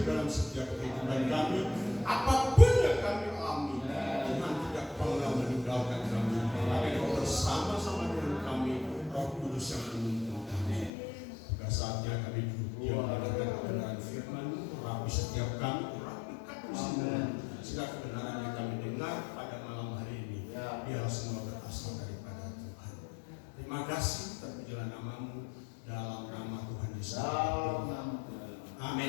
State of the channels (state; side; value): drops out; right; at 10.9 s